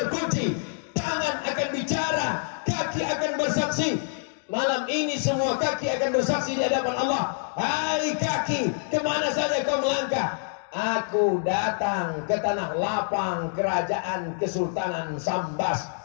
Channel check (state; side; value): silent; right; digital silence